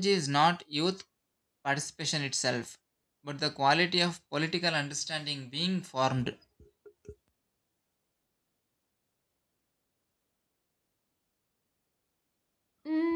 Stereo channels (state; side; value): identical; both; correlation 1.00